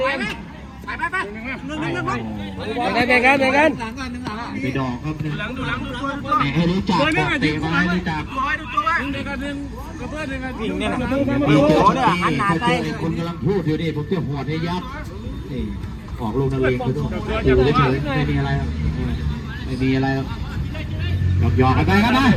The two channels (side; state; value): both; identical; correlation 1.00